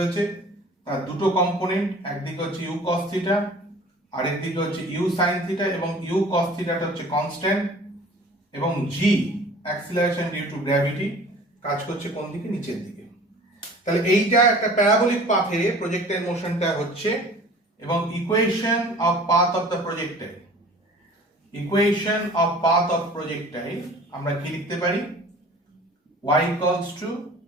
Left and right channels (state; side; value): normal; both; correlation 0.46